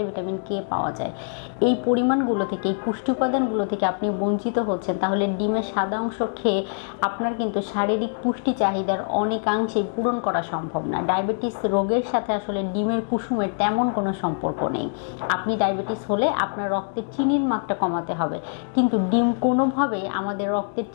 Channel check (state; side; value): silent; right; digital silence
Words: ভিটামিন কে পাওয়া যায়। এই পরিমাণগুলো থেকে, এই পুষ্টি উপাদানগুলো থেকে আপনি বঞ্চিত হচ্ছেন, তাহলে ডিমের সাদা অংশ খেয়ে আপনার কিন্তু শারীরিক পুষ্টি চাহিদার অনেকাংশেই পূরণ করা সম্ভব না। ডায়াবেটিস রোগের সাথে আসলে ডিমের কুসুমের তেমন কোনো সম্পর্ক নেই। আপনি ডায়াবেটিস হলে আপনার রক্তের চিনির মাত্রা কমাতে হবে, কিন্তু ডিম কোনোভাবেই আমাদের রক্তের